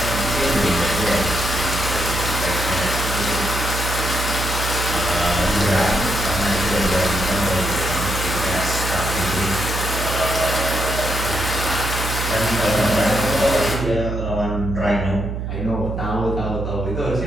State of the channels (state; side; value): noise; right; hum, 4 dB below the sound